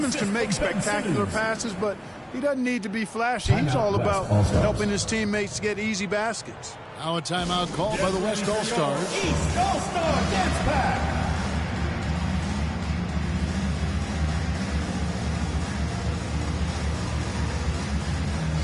can make spectacular passes, but he doesn't need to be flashy. He's all about helping his teammates get easy baskets. Now a timeout called by the West All-Stars. East All-Star Dance Pack.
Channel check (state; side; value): identical; both; correlation 1.00